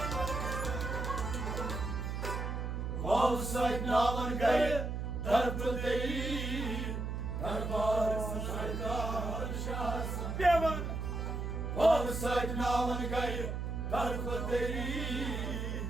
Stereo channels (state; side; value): noise; right; hum, 3 dB below the sound